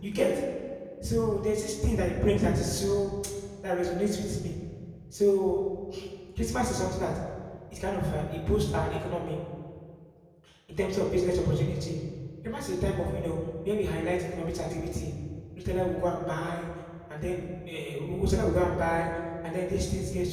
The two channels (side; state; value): both; identical; correlation 1.00